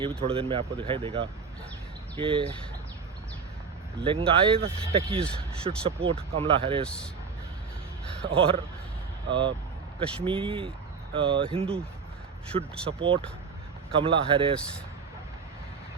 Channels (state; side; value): quieter; left; 5.4 dB